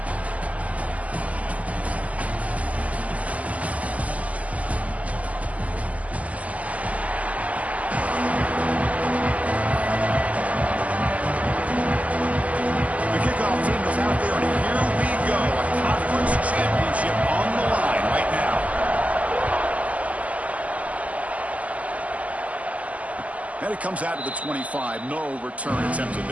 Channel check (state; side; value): late; left; 0.071 ms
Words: And it comes out of the 25. No return attempted